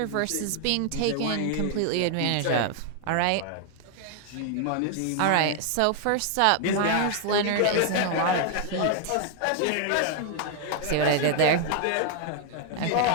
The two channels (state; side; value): different; both; correlation 0.00